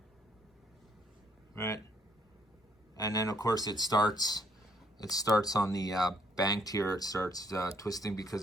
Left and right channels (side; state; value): both; normal; correlation 0.69